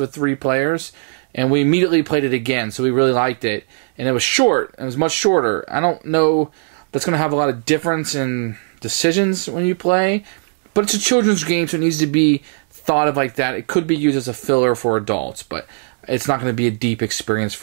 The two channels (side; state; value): left; silent; digital silence